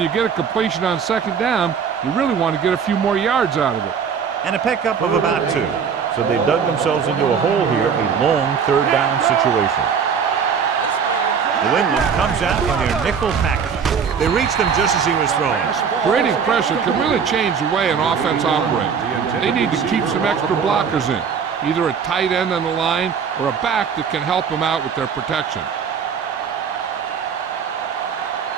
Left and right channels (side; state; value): left; quieter; 6.7 dB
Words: you get a completion on second down, you really want to get a few more yards out of it. And a pickup of about 2. So they dug themselves into a hole here, a long third down situation. New England comes out in their nickel package. They reach them just as he was throwing. Creating pressure can really change the way an offense operates. They need to keep some extra blockers in, either a tight end on the line or a back that can help them out with their protection.